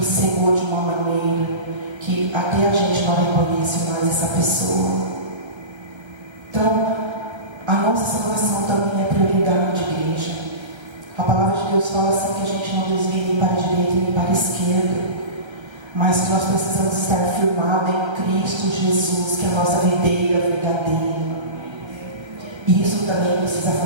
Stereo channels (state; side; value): late; left; 1.3 ms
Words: cegou de uma maneira que até a gente não reconhece mais essa pessoa. Então, a nossa salvação também é prioridade, igreja. A palavra de Deus fala assim que a gente não desvia nem para a direita nem para a esquerda, mas que nós precisamos estar firmados em Cristo Jesus, que é a nossa videira verdadeira. E isso também precisa